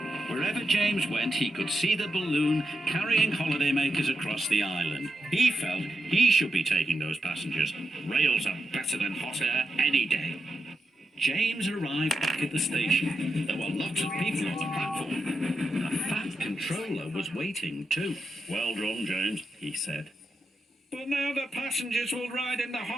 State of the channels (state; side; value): normal; both; correlation 0.86